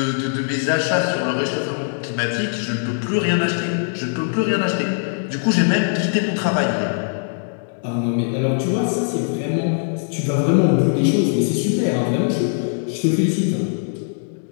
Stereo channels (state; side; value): silent; right; digital silence